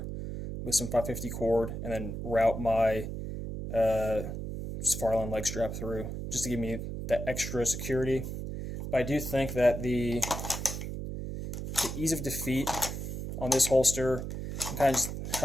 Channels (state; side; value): noise; right; hum, 6 dB below the sound